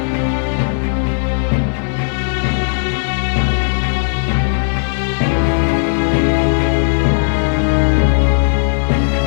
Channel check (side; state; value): right; silent; digital silence